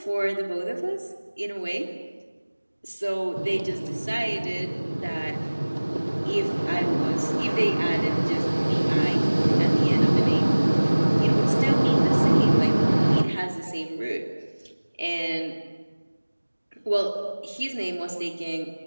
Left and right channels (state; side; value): inverted; both; correlation -1.00